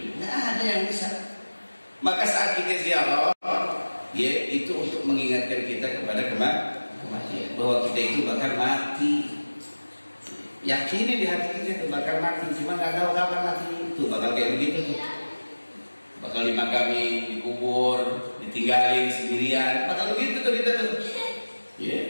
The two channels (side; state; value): both; inverted; correlation -1.00